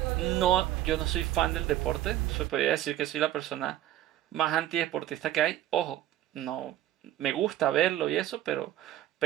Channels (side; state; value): left; quieter; 13.0 dB